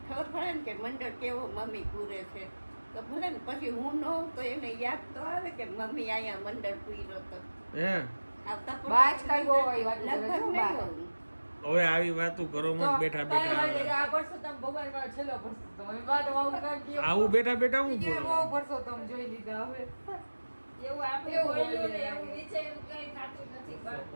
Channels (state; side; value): inverted; both; correlation -1.00